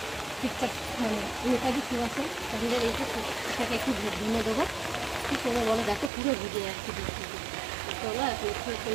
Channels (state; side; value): drops out; left; at 6.1 s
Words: ঠিকঠাক মানে নেতাজি সুভাষে আমাদের এই যে এটাকে একটু ধুয়ে দেবো। কী করে বলো, দেখো পুরো ভিজে যাচ্ছে বৃষ্টিতে। চলো এখন একটু